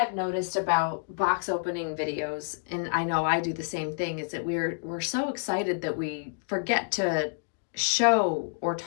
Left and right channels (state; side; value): silent; right; digital silence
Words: noticed about box opening videos, and I know I do the same thing, is that we're so excited that we forget to show or